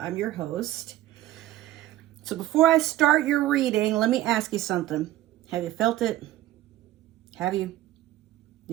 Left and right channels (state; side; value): quieter; left; 14.7 dB